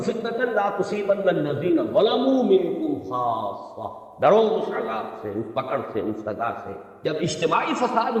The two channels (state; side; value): identical; both; correlation 1.00